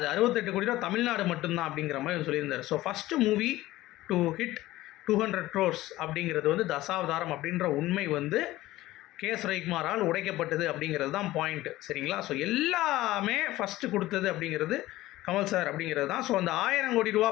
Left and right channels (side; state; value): right; quieter; 16.8 dB